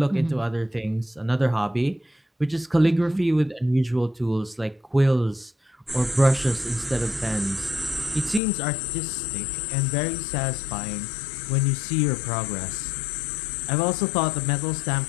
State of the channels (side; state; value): right; drops out; at 8.4 s